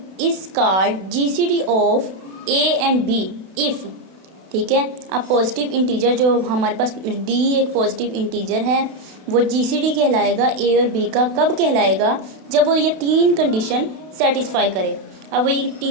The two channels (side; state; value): left; late; 32 ms